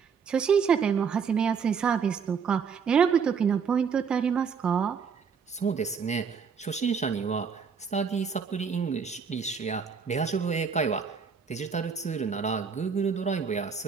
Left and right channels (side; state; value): left; quieter; 6.2 dB